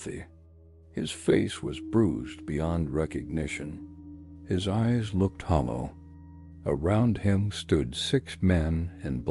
His face was bruised beyond recognition. His eyes looked hollow. Around him stood 6 men in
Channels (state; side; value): identical; both; correlation 1.00